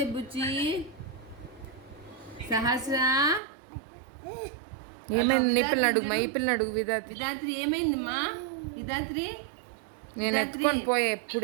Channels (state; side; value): drops out; left; at 3.4 s